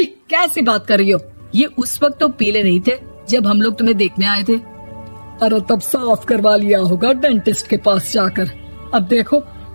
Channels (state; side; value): inverted; both; correlation -1.00